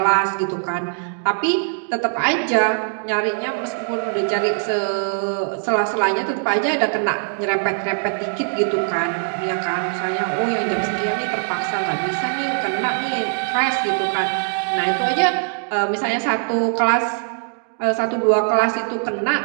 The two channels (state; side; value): silent; left; digital silence